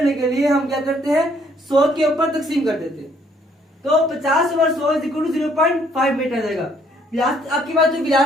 के लिए हम क्या करते हैं, 100 के ऊपर तकसीम कर देते हैं। तो 50 over 100 is equal to 0.5 metre आ जाएगा। आपके पास जो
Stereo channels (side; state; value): both; normal; correlation 0.65